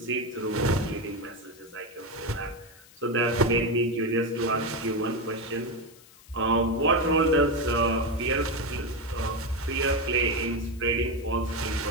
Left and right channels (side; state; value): left; noise; hiss, 24 dB below the sound